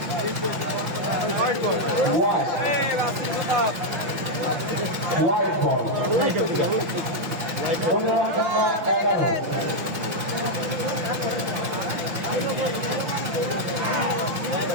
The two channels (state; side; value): late; left; 6.1 ms